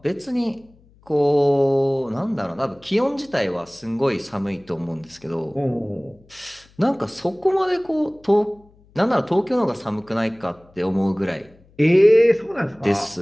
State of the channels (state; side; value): noise; left; hum, 29 dB below the sound